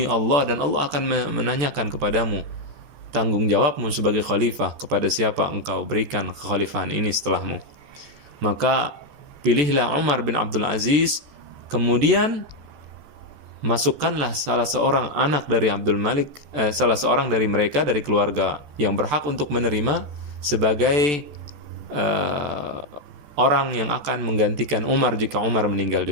Allah, dan Allah akan menanyakan kepadamu tanggung jawabmu sebagai khalifah, kepada siapa engkau berikan kekhalifahan ini setelahmu. Maka pilihlah Umar bin Abdul Aziz, kemudian masukkanlah salah seorang anak dari Abdul Malik, salah seorang dari mereka, dari keluarga yang berhak untuk menerima sebagai orang yang akan menggantikan Umar jika Umar meninggal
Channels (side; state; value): left; late; 14 ms